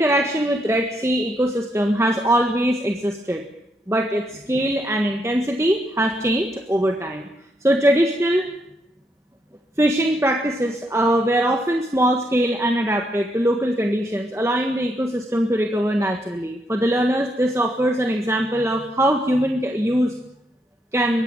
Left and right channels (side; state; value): both; normal; correlation 0.77